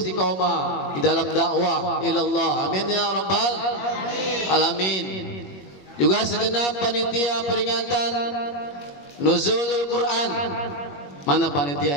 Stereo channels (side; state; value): right; late; 21 ms